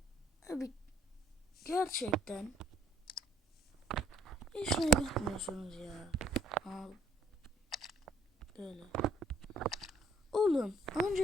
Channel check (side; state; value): both; normal; correlation 0.62